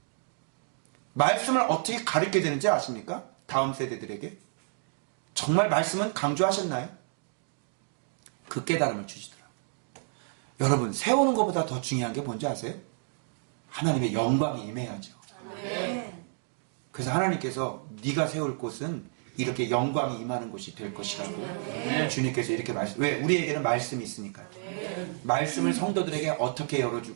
말씀을 어떻게 가르쳐야 되는지 아십니까? 다음 세대들에게. 정말 말씀은 강조하셨나요? 그 깨달음을 주시더라고요. 여러분, 세우는 것보다 더 중요한 게 뭔지 아세요? 하나님의 영광이 임해야죠. 그래서 하나님께서 네가 세울 곳은 이렇게 영광이 임하는 곳이 될 것이라고 주님께서 이렇게 왜? 우리에게는 말씀이 있으니까요. 말씀을 성도들에게 어떻게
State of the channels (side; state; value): left; silent; digital silence